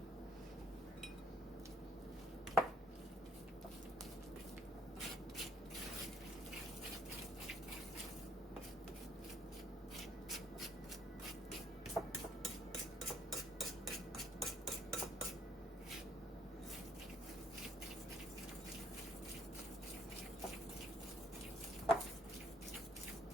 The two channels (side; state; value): both; normal; correlation 0.65